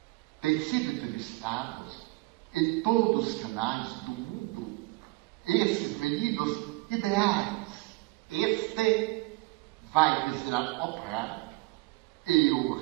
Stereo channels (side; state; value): left; quieter; 22.3 dB